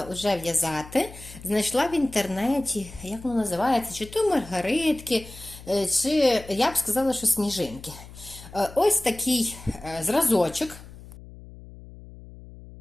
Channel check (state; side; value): noise; left; hum, 17 dB below the sound